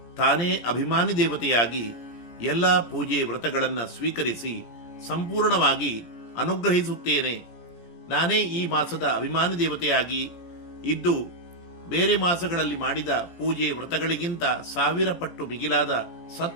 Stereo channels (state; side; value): late; right; 17 ms